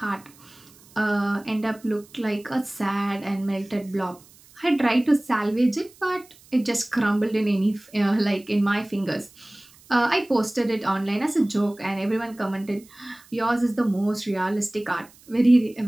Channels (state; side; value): noise; right; hiss, 26 dB below the sound